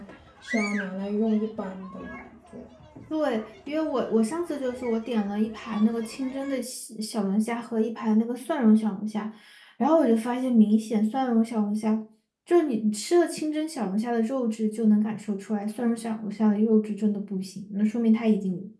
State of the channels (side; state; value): both; identical; correlation 1.00